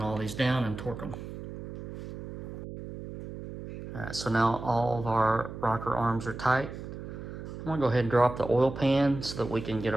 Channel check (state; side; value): noise; right; hum, 10 dB below the sound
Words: all these down and torque them. All right, so now all of our rocker arms are tight. I'm gonna go ahead and drop the oil pan so that we can get